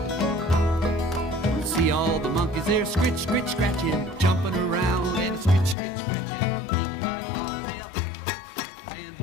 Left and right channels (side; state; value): right; drops out; at 5.8 s